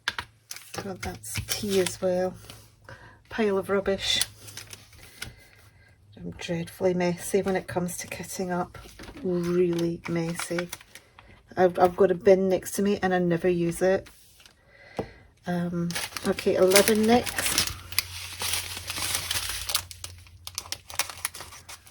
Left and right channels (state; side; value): identical; both; correlation 1.00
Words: God, that's tea as well. Pile of rubbish. I'm dreadfully messy when it comes to kitting up. Really messy. I've got a bin next to me and I never use it. Okay, 11 next.